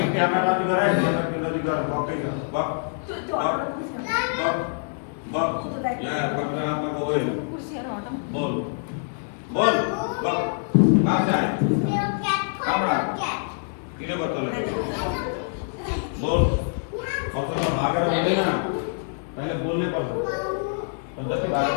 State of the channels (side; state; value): right; silent; digital silence